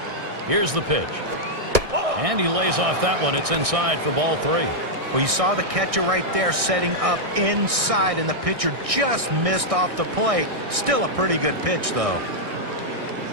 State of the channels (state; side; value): late; left; 1.6 ms